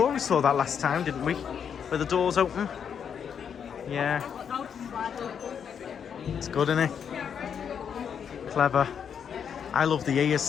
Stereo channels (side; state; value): right; quieter; 7.6 dB